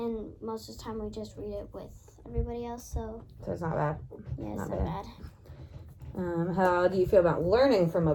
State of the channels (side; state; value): both; identical; correlation 1.00